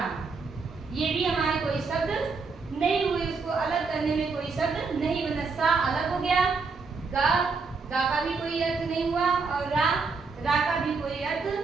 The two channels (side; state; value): left; quieter; 4.6 dB